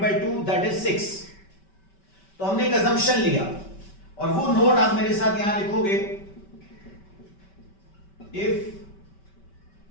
2 दैट इज 6। तो हमने एक असम्पशन लिया और वो नोट आप मेरे साथ यहां लिखोगे। If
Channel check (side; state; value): right; late; 5.2 ms